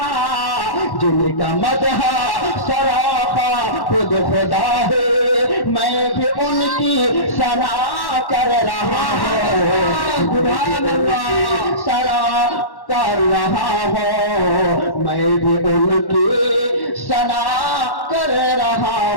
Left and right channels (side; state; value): right; late; 1.1 ms